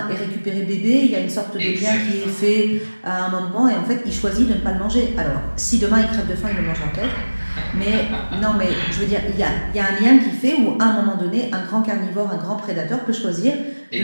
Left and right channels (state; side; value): inverted; both; correlation -1.00